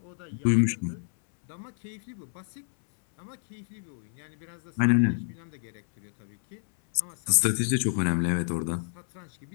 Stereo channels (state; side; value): silent; right; 59 dB below the other